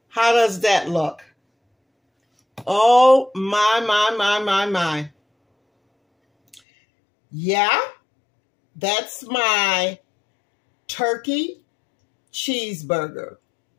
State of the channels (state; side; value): drops out; right; at 6.6 s